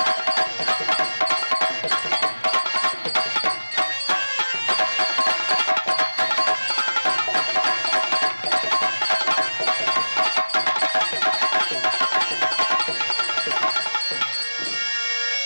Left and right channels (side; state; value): both; inverted; correlation -1.00